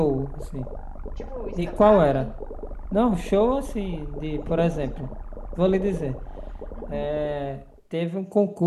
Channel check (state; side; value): identical; both; correlation 1.00